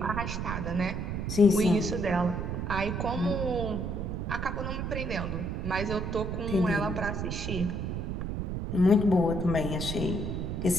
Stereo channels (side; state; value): right; noise; rumble, 3 dB below the sound